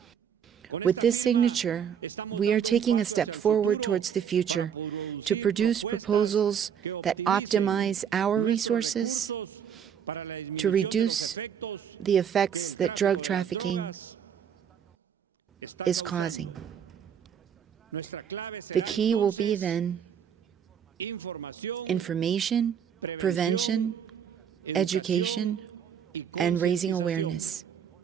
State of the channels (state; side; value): quieter; left; 8.1 dB